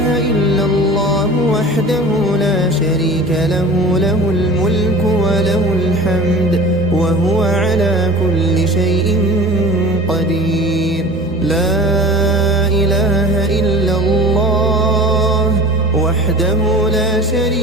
إلا الله وحده وحده لا شريك له، له الملك وله الحمد وهو على كل شيء قدير. لا إله إلا الله وحده لا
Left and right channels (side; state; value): right; noise; hum, 19 dB below the sound